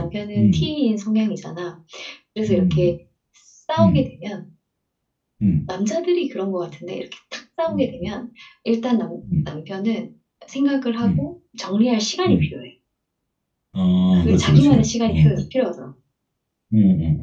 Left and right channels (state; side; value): identical; both; correlation 1.00